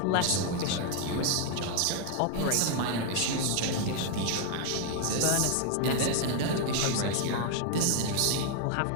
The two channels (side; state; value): both; different; correlation 0.00